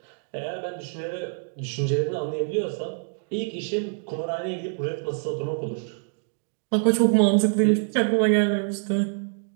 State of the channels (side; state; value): left; silent; 61 dB below the other